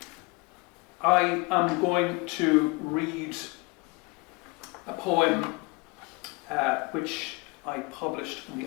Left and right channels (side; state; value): right; quieter; 27.1 dB